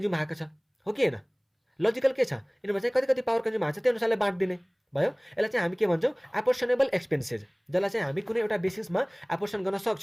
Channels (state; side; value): identical; both; correlation 1.00